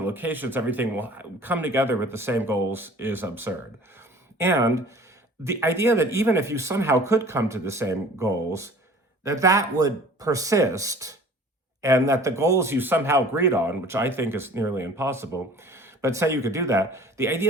locations, everything will come together with the same goals is absurd. And the idea that even if you somehow could come to the same goals, that would persist, and that the goals you somehow agreed on, which I think is nearly impossible, but say you could do that, the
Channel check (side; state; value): both; normal; correlation 0.47